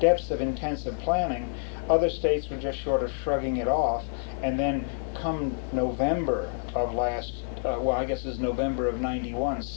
of intensive planning, other states were just short of shrugging it off, and then come November of I guess it was November of '91,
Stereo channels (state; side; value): silent; right; digital silence